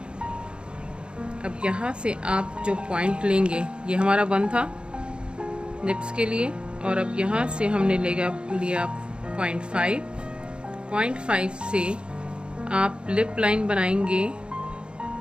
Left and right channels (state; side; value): late; left; 0.054 ms